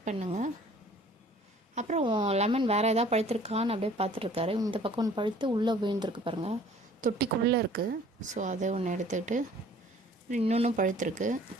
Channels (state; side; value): normal; both; correlation 0.53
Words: பண்ணுங்கள். அப்புறம் லெமன் வேறு எதாவது பழுத்திருக்கான்னு அப்படியே பார்த்துட்ருக்காரு. இந்த பக்கம் ஒன்று பழுத்து உள்ளே விழுந்திருக்கு பாருங்கள், தொட்டிக்குள்ளே இருக்குது. ஸோ அதை ஒன்று எடுத்துக்கிட்டு இன்னொன்றும் பழுத்திருக்கு.